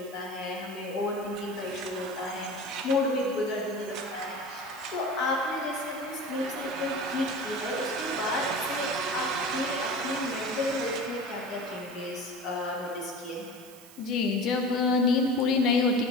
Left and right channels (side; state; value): right; noise; hiss, 20 dB below the sound